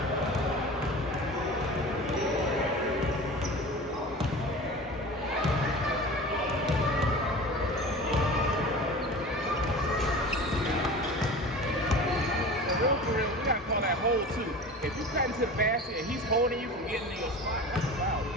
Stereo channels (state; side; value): normal; both; correlation 0.36